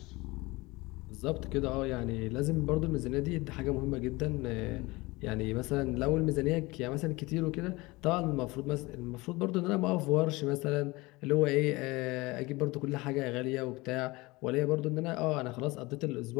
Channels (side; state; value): right; quieter; 22.4 dB